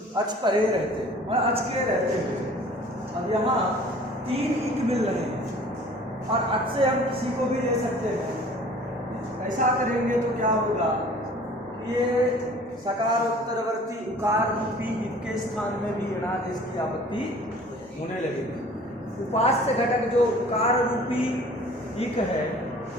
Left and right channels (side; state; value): both; normal; correlation 0.49